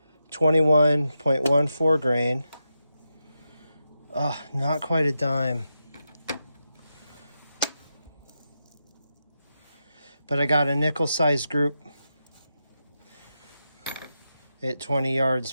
21.14 grain. Not quite a dime. But I got a nickel-sized group at 20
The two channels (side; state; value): both; inverted; correlation -0.87